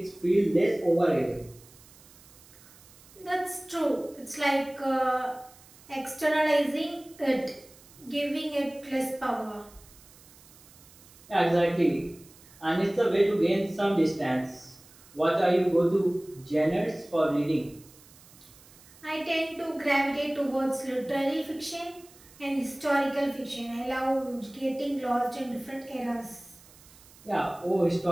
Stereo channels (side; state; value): right; noise; hiss, 24 dB below the sound